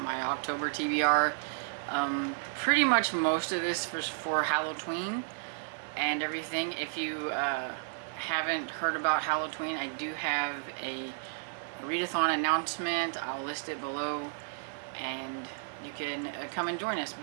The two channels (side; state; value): left; silent; 56 dB below the other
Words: October TBR. Pretty much most of this was for Hallowtween and everything. If you haven't heard about Hallowtween, I do have a readathon announcement. I'll list it below, and you can come and join us.